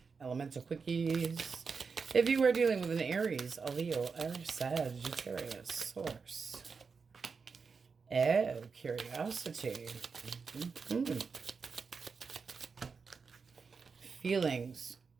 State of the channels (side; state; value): left; quieter; 5.2 dB